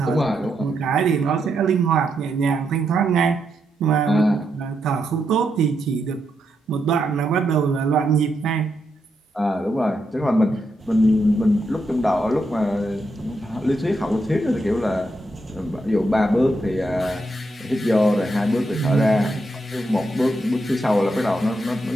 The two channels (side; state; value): both; normal; correlation 0.82